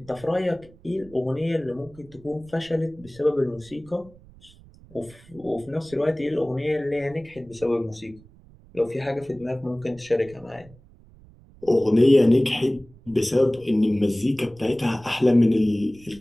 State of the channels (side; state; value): right; noise; rumble, 24 dB below the sound